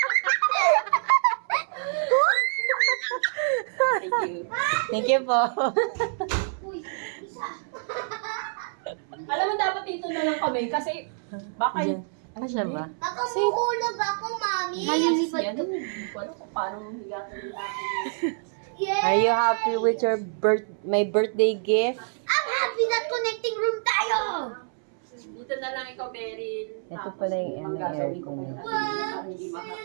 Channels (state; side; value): silent; left; 60 dB below the other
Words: you. Thank you po. Alam mo, dapat dito na lang kami kasi baka Diyan. Ano siya ba? Baka mahulog ako, mami. Malilipad ka. Hindi ko alam kung paano higatin nila. Yeah. Are you happy with your my birthday gift? I'm happy that connecting room tayo. Dito na lang ikaw, Beryl. Ito pala yung manggagawin ko aircon. kayo. Para hindi